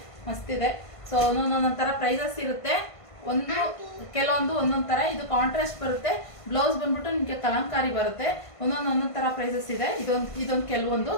ಮಸ್ತಿದೆ. ಸೊ ಒಂದೊಂದೊಂದೊಂದು ಥರ ಪ್ರೈಸಸ್ ಇರುತ್ತೆ. ಕೆಲವೊಂದು ಒಂದೊಂದು ಥರ. ಇದು ಕಾಂಟ್ರಾಸ್ಟ್ ಬರುತ್ತೆ. ಬ್ಲೌಸ್ ಬಂದ್ಬಿಟ್ಟು ನಿಮಗೆ ಕಲಂಕಾರಿ ಬರುತ್ತೆ. ಒಂದೊಂದು ಥರ ಪ್ರೈಸಸ್ ಇದೆ. ಇದೊಂದು ಕೆಲವೊಂದು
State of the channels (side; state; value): right; late; 1.5 ms